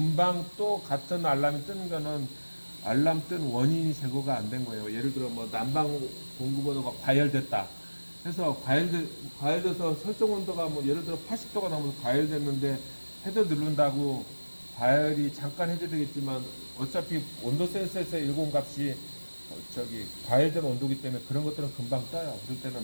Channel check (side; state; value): both; inverted; correlation -1.00